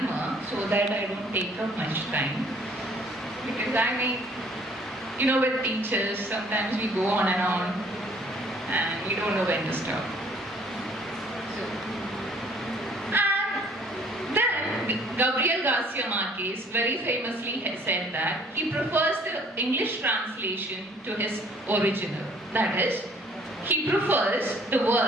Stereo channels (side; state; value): both; normal; correlation 0.58